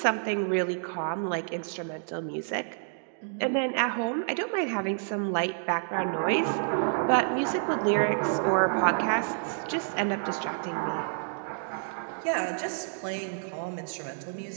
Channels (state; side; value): silent; left; digital silence